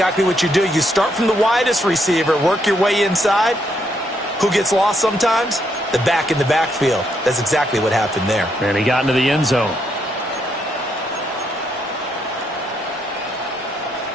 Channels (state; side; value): normal; both; correlation 0.76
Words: what you do. You start from the widest receiver, work your way inside. Who gets lost sometimes? The back in the backfield. That's exactly what happened there. And he got into the end zone.